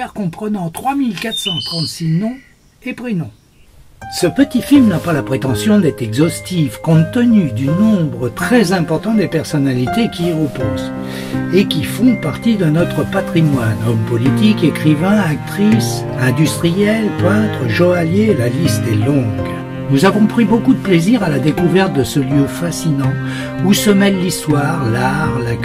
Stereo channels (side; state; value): both; identical; correlation 1.00